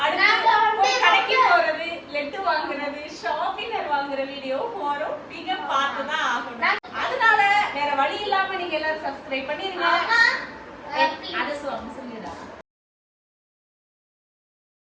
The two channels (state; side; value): identical; both; correlation 1.00